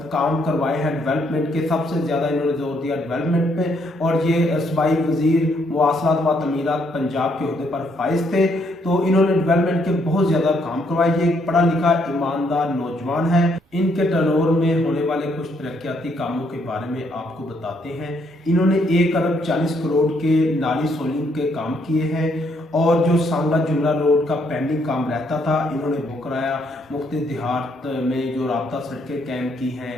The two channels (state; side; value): normal; both; correlation 0.72